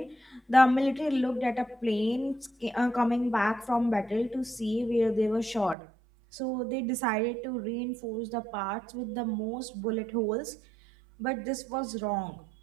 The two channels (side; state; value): left; drops out; at 5.8 s